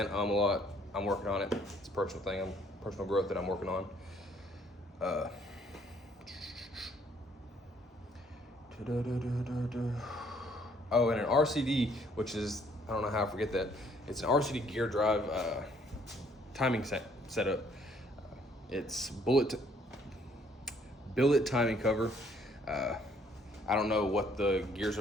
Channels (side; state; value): both; normal; correlation 0.64